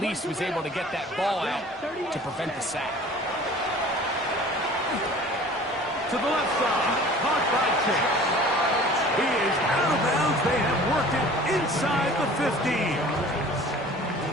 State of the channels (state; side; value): normal; both; correlation 0.46